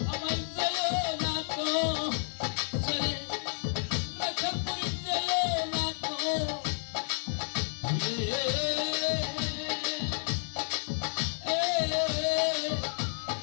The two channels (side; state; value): right; silent; 57 dB below the other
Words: আমার জেলে না তো ছেড়ে রাখাল পুরি জেলে না তো